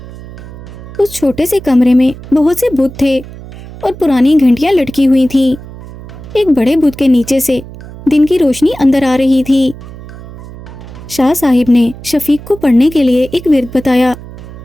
اس چھوٹے سے کمرے میں بہت سے بت تھے اور پرانی گھنٹیاں لٹکی ہوئی تھیں۔ ایک بڑے بت کے نیچے سے دن کی روشنی اندر آ رہی تھی۔ شاہ صاحب نے شفیق کو پڑھنے کے لیے ایک ورد بتایا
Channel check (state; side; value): noise; right; hum, 15 dB below the sound